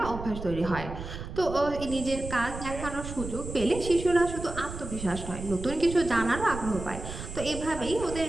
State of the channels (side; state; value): right; noise; rumble, 9 dB below the sound